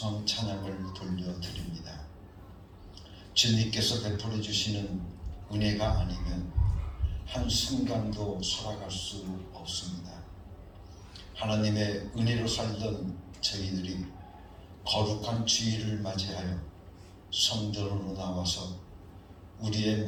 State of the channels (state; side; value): identical; both; correlation 1.00